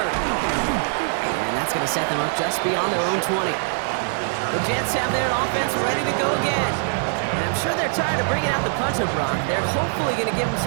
And that's going to set them up just beyond their own 20. The Jets have their offense ready to go again. And I'm sure they're tired of bringing out the punter, Brock. They're hopefully going to give them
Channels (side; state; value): left; silent; 64 dB below the other